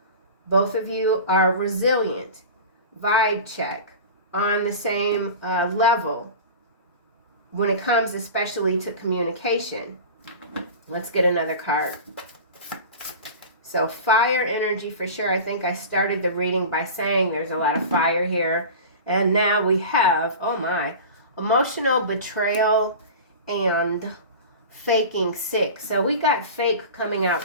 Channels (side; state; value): both; inverted; correlation -0.34